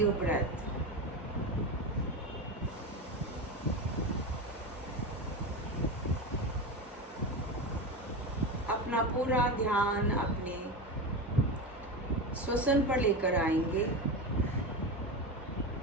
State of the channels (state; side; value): normal; both; correlation 0.21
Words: breath. अपना पूरा ध्यान अपने श्वसन पर लेकर आएंगे.